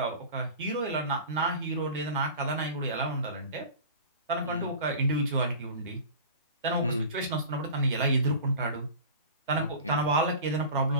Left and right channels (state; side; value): inverted; both; correlation -0.37